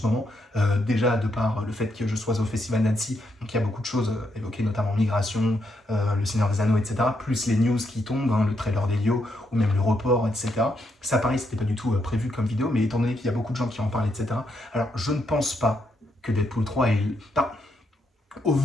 moment. Déjà, de par le fait que je sois au Festival d'Annecy, donc il y a beaucoup de choses évoquées, notamment migration, le Seigneur des Anneaux, etc. Plus les news qui tombent, hein, le trailer d'Elio, ou même le report, etc. Ça, pareil, c'était pas du tout prévu comme vidéo, mais étant donné qu'il y a beaucoup de gens qui en parlent, etc. Alors, je ne pense pas que Deadpool 3 est... Enfin, au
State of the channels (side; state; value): both; normal; correlation 0.79